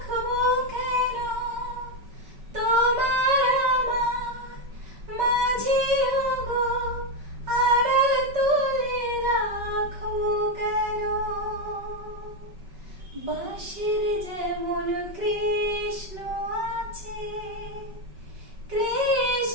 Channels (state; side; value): late; left; 5.3 ms